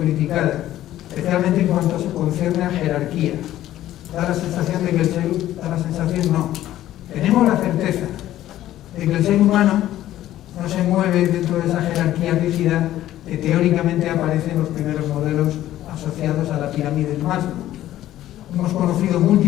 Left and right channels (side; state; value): right; quieter; 13.5 dB